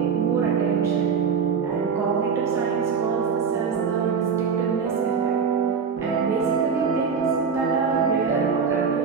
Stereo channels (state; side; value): quieter; left; 6.1 dB